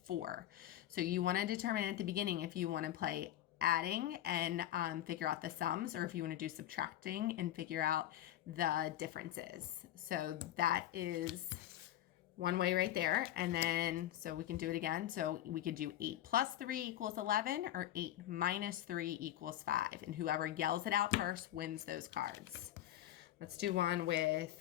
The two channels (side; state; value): right; quieter; 13.0 dB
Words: So you want to determine at the beginning if you want to play adding and figure out the sums, or if you want to do subtracting and figure out the differences. So that is one way right there. And then, so we can do it again. So we could do 8 plus 3 equals 11, or 8 minus 3 equals 5. And whoever yells it out first wins those cards. Let's do one